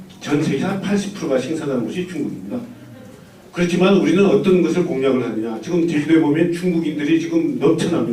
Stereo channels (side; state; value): both; identical; correlation 1.00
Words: 전 세계 한 80%가 생산하는 곳이 중국입니다. 그렇지만 우리는 어떤 것을 공략을 하느냐. 지금 제주도에 보면 중국인들이 지금